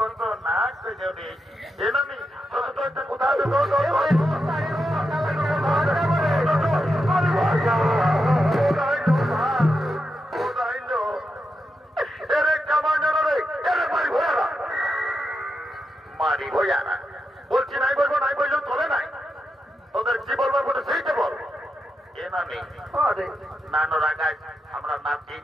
না করে আমি একটা কোথাও মারি ভয়ারা বলছি, নাই বলবো, নাই বললেও চলে নাই। তোদের কি বলবো বলে সেইটা বল। এ নানি নানো রাগাই আমরা নাতি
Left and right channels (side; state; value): both; normal; correlation 0.86